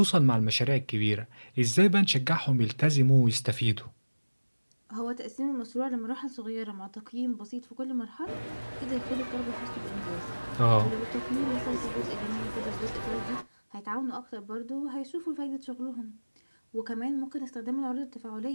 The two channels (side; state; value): both; inverted; correlation -1.00